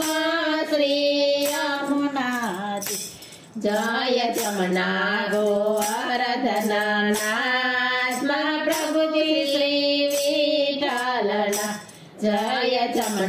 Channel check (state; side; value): identical; both; correlation 1.00